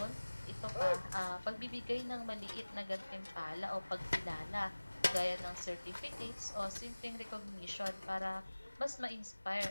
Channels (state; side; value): inverted; both; correlation -1.00